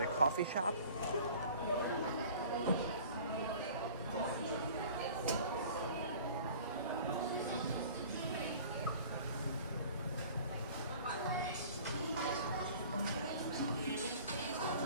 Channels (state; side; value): inverted; both; correlation -0.46